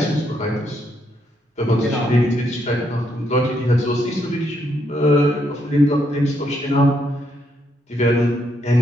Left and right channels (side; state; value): both; normal; correlation 0.76